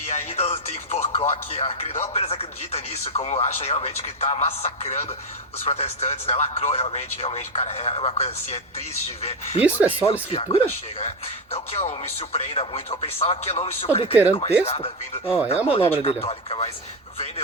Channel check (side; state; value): both; normal; correlation 0.11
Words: ainda tem porcó que não apenas acredita nisso, como acha realmente que está massacrando os protestantes, né? Lacrou realmente, cara, é uma coisa assim, é triste de ver. Isso é só a escritura? Chega, né? Não que eu me surpreenda muito, eu pensava que eu não me surpreenderia adulterando com texto? nada vindo É a manobra dele. Católica, mas